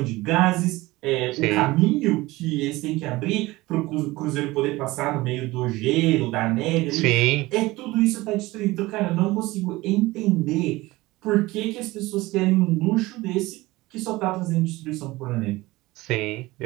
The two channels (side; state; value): left; quieter; 19.9 dB